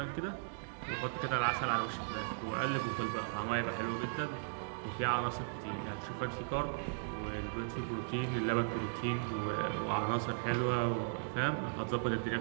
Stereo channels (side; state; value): left; silent; digital silence